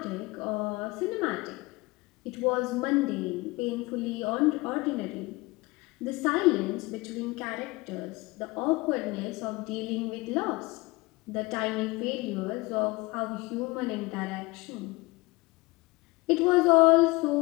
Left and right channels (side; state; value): right; quieter; 23.1 dB